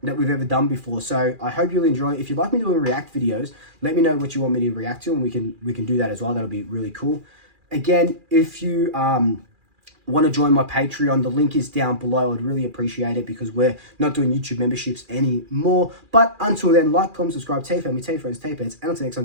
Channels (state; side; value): late; left; 2.4 ms